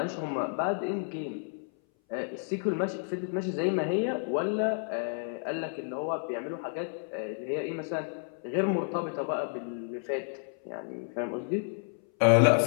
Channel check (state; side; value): silent; right; 57 dB below the other